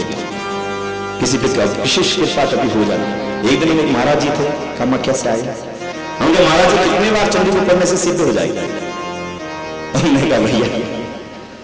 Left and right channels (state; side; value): identical; both; correlation 1.00